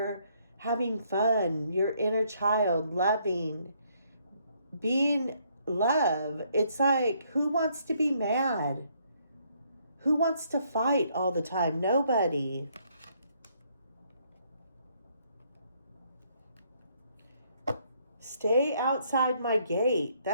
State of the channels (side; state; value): both; inverted; correlation -0.69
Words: having fun, your inner child, loving, being love. It's like, who wants to be mad? Who wants to fight all the time? Nobody. Stay outside my gate.